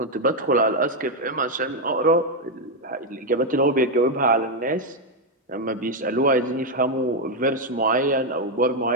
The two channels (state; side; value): normal; both; correlation 0.03